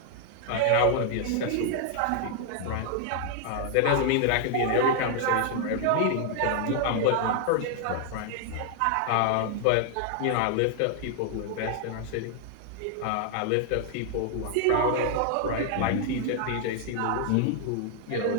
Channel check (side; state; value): both; different; correlation 0.00